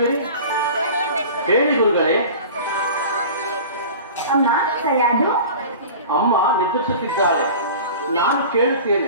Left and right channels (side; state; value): both; inverted; correlation -0.38